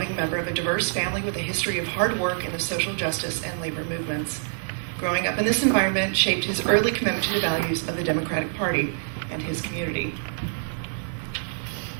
member of a diverse family with a history of hard work in the social justice and labor movements. Growing up in this environment shaped his early commitment to the values of the Democratic Party and his community.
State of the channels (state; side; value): silent; left; digital silence